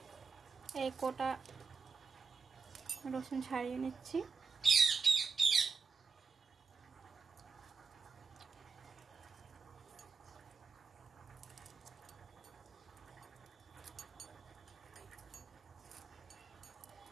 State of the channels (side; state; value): left; quieter; 4.9 dB